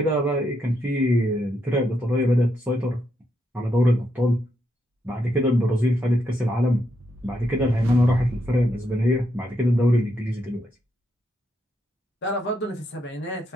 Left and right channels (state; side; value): normal; both; correlation 0.80